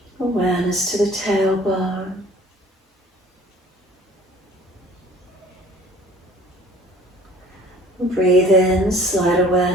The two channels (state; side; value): normal; both; correlation 0.50